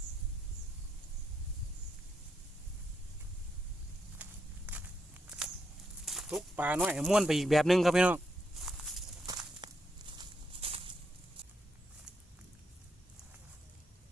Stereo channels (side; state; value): both; normal; correlation 0.79